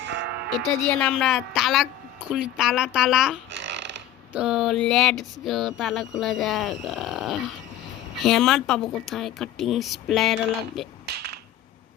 এটা দিয়ে না আমরা তালা খুলি, তালা তো লেটস গো, তালা খোলা যাক। হ্যামার পাবো কোথায়? কাটিং স্প্লেয়ার লাগবে।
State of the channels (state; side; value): quieter; right; 11.1 dB